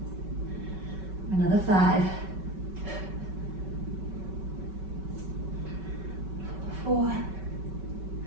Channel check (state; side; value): late; left; 5.3 ms